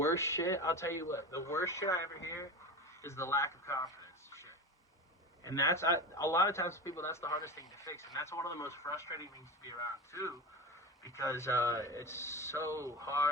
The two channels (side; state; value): both; normal; correlation 0.25